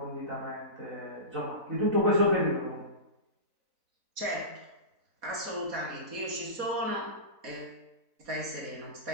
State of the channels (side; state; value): left; late; 4.0 ms